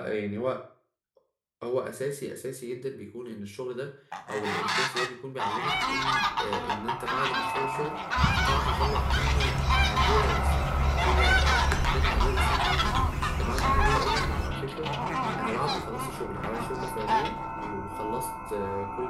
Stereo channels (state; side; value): identical; both; correlation 1.00